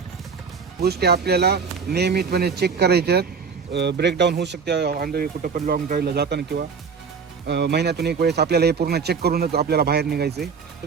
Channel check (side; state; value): left; quieter; 5.7 dB